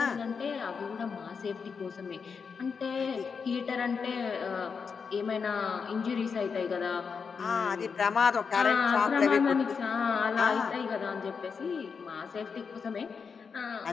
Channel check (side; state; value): right; quieter; 5.8 dB